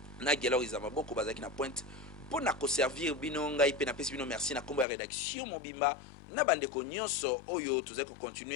na Gelo Izamaboko bazaki na pointe pour na servir bino ngai pe na pesi bino merci na kombo ya rédaction Mobimba na bandeko nyonso oyo tuzai ko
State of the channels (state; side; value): drops out; right; at 4.9 s